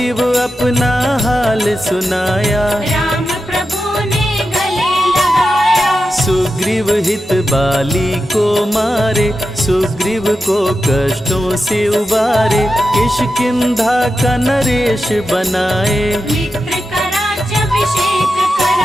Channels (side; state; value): both; normal; correlation 0.90